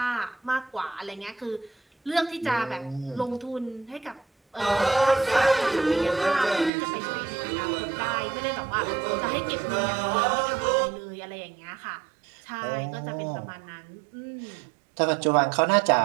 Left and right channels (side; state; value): left; drops out; at 6.7 s